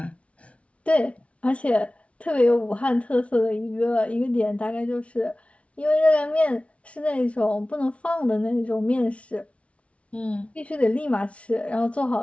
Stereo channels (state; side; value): late; right; 0.063 ms